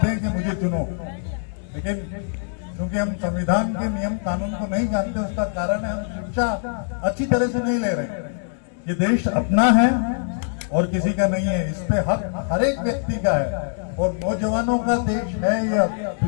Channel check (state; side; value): silent; right; digital silence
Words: हैं कि मुझे चुनो, लेकिन क्योंकि हम संविधान के नियम कानून को नहीं जानते, उसका कारण है हम शिक्षा अच्छी तरह से नहीं ले रहे। ये देश अपना है और किसी का नहीं है, इस पे हक हर एक व्यक्ति का है और नौजवानों का देश है ये